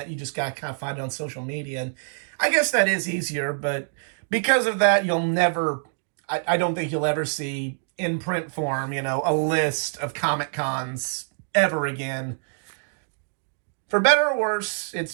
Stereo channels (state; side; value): silent; left; digital silence